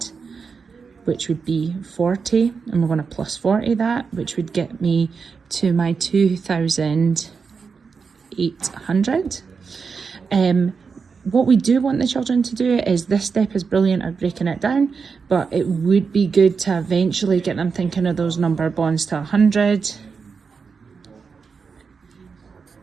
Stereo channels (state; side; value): quieter; left; 5.4 dB